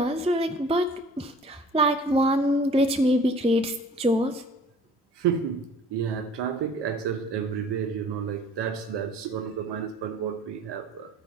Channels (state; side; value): normal; both; correlation 0.50